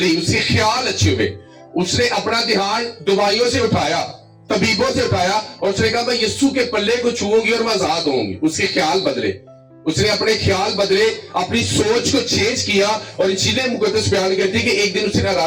اس کے خیال اچھے ہوئے اس نے اپنا دھیان دوائیوں سے اٹھایا طبیبوں سے اٹھایا اور اس نے کہا میں یسوع کے پلے کو چھوؤں گی اور میں آزاد ہوں گی اس کے خیال بدلے اس نے اپنے خیال بدلے اپنی سوچ کو چینج کیا اور انجیل مقدس بیان کرتی کہ ایک دن اس نے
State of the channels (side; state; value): both; identical; correlation 1.00